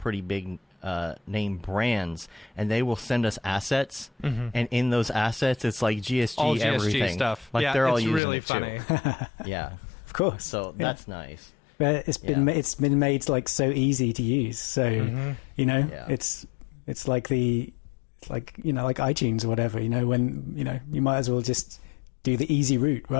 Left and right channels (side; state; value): right; drops out; at 8.2 s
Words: big name brands, and they will send us assets, and in those assets it's like GSG, All GSG everything stuff. like Yeah, they're all it's using really it funny. too. Yeah, Of course. so that's nice. But it's been made like so easy to use. So it's like like iTunes or whatever. When you might as well just do the easy route,